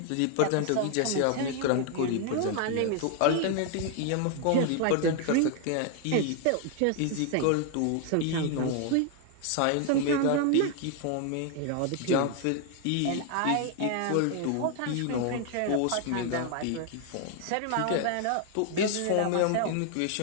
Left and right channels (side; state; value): both; different; correlation 0.00